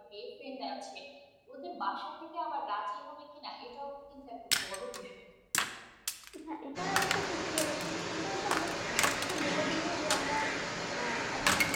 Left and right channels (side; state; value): both; identical; correlation 1.00